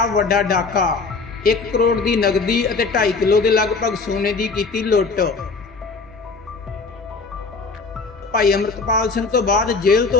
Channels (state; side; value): quieter; right; 4.3 dB